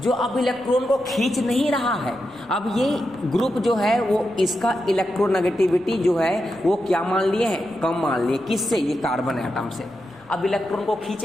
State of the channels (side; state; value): left; noise; rumble, 29 dB below the sound